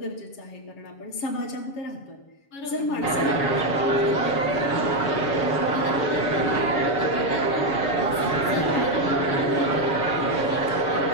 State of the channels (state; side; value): late; right; 7.2 ms